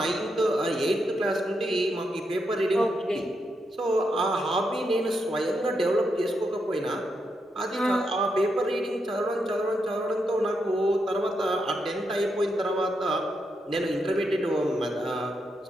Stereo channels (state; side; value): normal; both; correlation 0.82